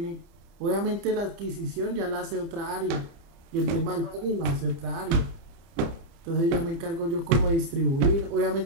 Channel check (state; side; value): late; left; 30 ms